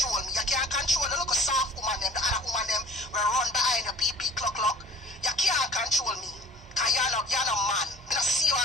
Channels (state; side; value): normal; both; correlation 0.48